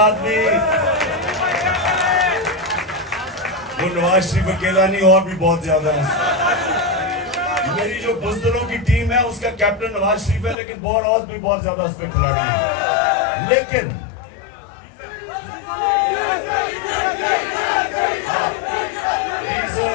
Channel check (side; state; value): right; drops out; at 10.6 s